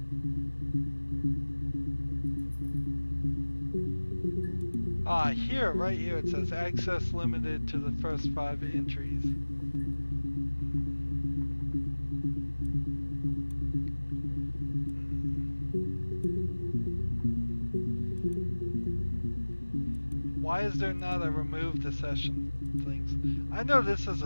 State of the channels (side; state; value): both; inverted; correlation -1.00